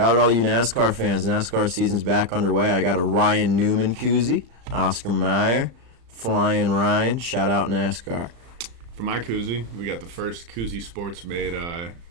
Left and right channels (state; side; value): late; left; 35 ms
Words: out all you NASCAR fans. NASCAR season's back underway. I got a Ryan Newman koozie. Oscar Mayer. Flying Ryan. Shout out NASCAR. For my koozie, we got the first Koozie Sports made